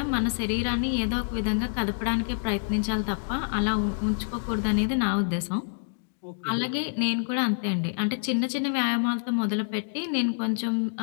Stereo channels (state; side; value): silent; right; digital silence